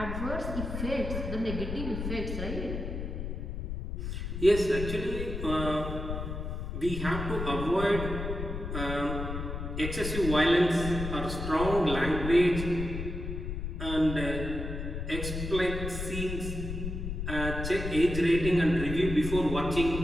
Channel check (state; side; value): noise; left; rumble, 5 dB below the sound